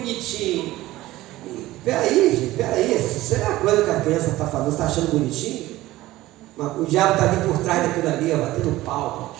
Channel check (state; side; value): quieter; left; 17.0 dB